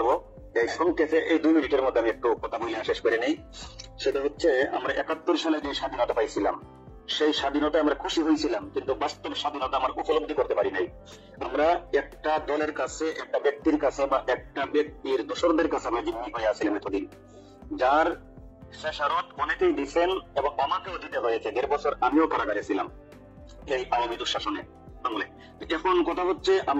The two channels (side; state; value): both; identical; correlation 1.00